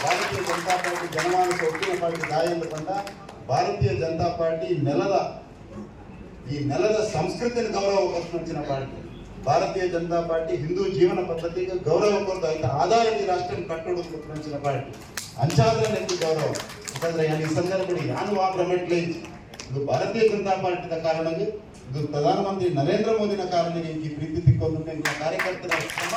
ಭಾರತೀಯ ಜನತಾ ಪಾರ್ಟಿ ಜನಮಾನಸ ಒಟ್ಟಿನ ಪಾರ್ಟಿ ದಾಯ ಎಂದುಕೊಂಡ ಭಾರತೀಯ ಜನತಾ ಪಾರ್ಟಿ ನೆಲದ ಸಂಸ್ಕೃತಿಯನ್ನು ಗೌರವ ಕೊಟ್ಟಿನ ಪಾರ್ಟಿ. ಭಾರತೀಯ ಜನತಾ ಪಾರ್ಟಿ ಹಿಂದೂ ಜೀವನ ಪದ್ಧತಿಗೆ ಗೌರವ ಕೊಡ್ತಾ ಇದ್ದ ಆಧಾರದ ಈ ರಾಷ್ಟ್ರ ಕಟ್ಟೋದು ಕೊಟ್ಟಿನ ಪಾರ್ಟಿ ಅಂಚಾದ್ರೆ ನೆನಪು ಗೌರವ. ಯಾಕಂದ್ರೆ ಈ ಸಂದರ್ಭದಲ್ಲಿ ಯಾನು ಆ ಪ್ರಮೆಟ್ಲೆ ಇದು ಭಾರತೀಯ ಜನತಾ ಪಾರ್ಟಿದ ಕಾರಣಕ್ಕೆ ಇದು ಪ್ರಧಾನಮಂತ್ರಿ ನರೇಂದ್ರ ಮೋದಿನ ಕಾರಣಕ್ಕೆ ಈ ಪ್ರೀತಿ ತಿಕ್ಕೊಂಡು ಕಾರ್ಯಕರ್ತರ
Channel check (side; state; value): both; identical; correlation 1.00